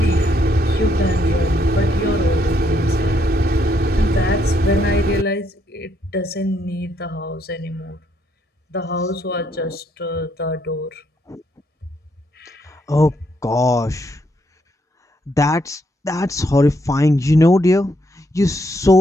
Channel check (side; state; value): both; normal; correlation 0.74